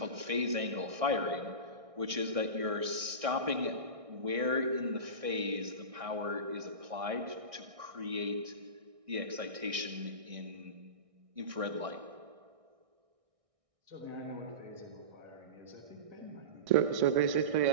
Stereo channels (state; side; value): late; left; 1.6 ms